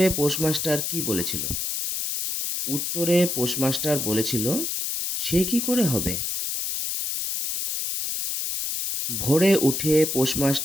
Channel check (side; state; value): left; noise; hiss, 2 dB below the sound